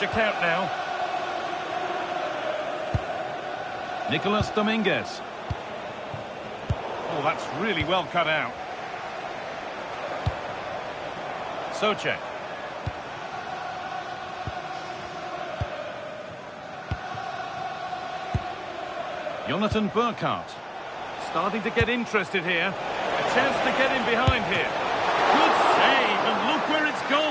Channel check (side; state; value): both; identical; correlation 1.00